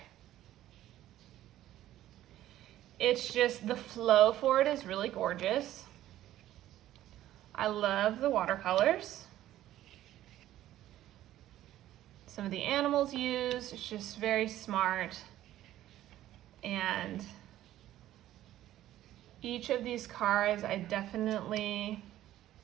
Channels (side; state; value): left; quieter; 13.5 dB